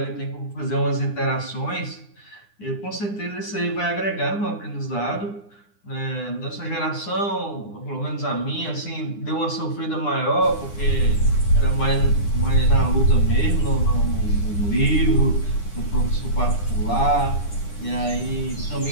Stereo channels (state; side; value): late; right; 9.8 ms